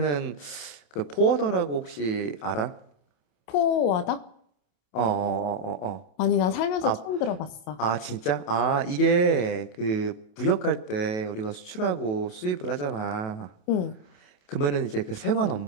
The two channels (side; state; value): right; late; 28 ms